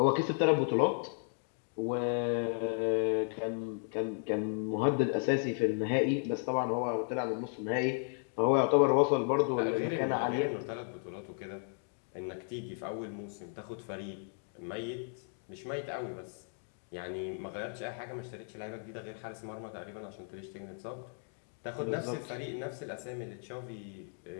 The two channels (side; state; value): right; silent; 55 dB below the other